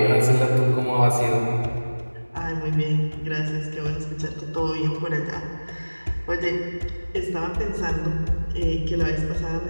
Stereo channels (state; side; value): inverted; both; correlation -1.00